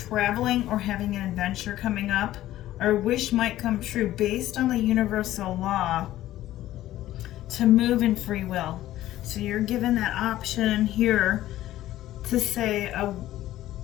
or having an adventure coming up, or a wish might come true based on the universal law to move in free will. So you're given that option here to say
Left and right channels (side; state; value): right; quieter; 14.3 dB